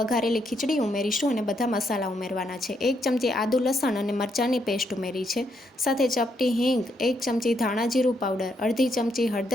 વઘારેલી ખીચડી ઉમેરીશું અને બધા મસાલા ઉમેરવાના છે। 1 ચમચી આદુ લસણ અને મરચાંની પેસ્ટ ઉમેરી છે, સાથે ચપટી હિંગ, 1 ચમચી ધાણા જીરું પાવડર, અડધી ચમચી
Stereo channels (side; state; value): both; normal; correlation 0.76